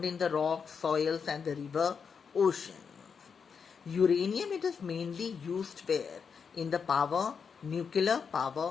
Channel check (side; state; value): right; quieter; 6.2 dB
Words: in the rocks, soils and the river oceans. Uranium, it is mainly used where? In the nuclear